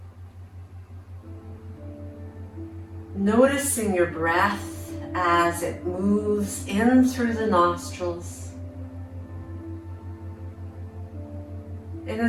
Noticing your breath as it moves in through the nostrils and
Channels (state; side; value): identical; both; correlation 1.00